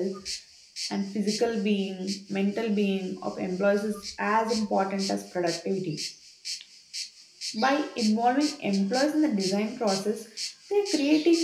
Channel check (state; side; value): identical; both; correlation 1.00